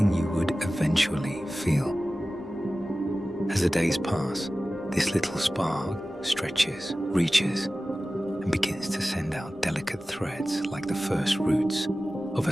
you would eventually feel. As the days pass, this little spark stretches, reaches, and begins to send out delicate threads like the first roots of a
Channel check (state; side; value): normal; both; correlation 0.96